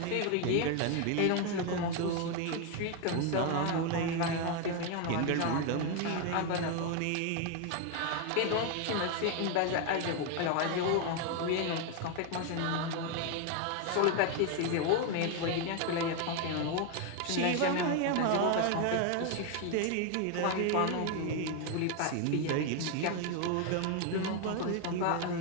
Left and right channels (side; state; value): both; different; correlation 0.01